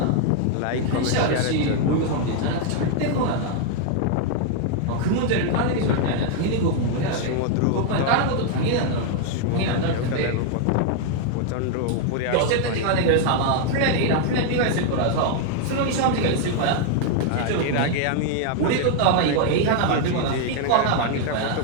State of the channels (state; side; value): different; both; correlation 0.00